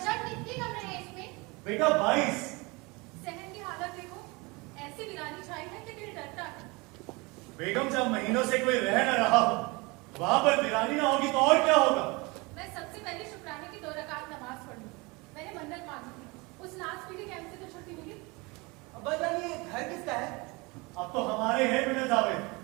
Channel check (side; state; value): left; quieter; 26.0 dB